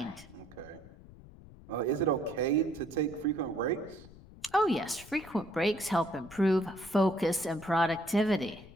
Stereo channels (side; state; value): left; noise; rumble, 20 dB below the sound